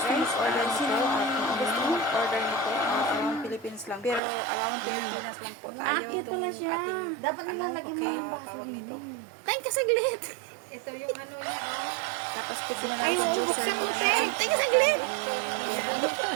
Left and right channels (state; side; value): drops out; left; at 4.2 s